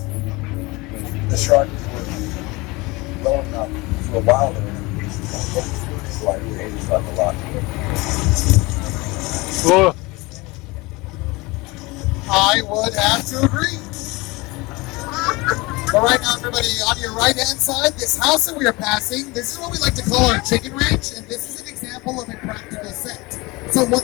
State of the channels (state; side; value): quieter; right; 23.8 dB